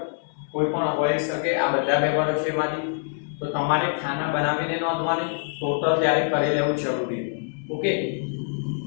કોઈ પણ હોઈ શકે. આ બધા વ્યવહારો છે એમાંથી, તો તમારે ખાના બનાવીને નોંધવાની, ટોટલ ત્યારે કરી લેવું જરૂરી. ઓકે,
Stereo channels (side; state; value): right; silent; 62 dB below the other